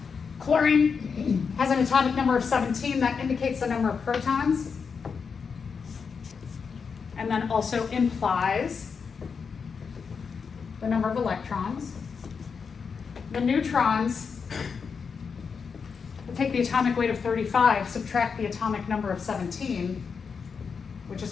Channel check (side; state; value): right; quieter; 5.8 dB